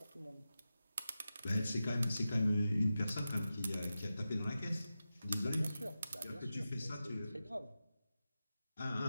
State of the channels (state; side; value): inverted; both; correlation -0.93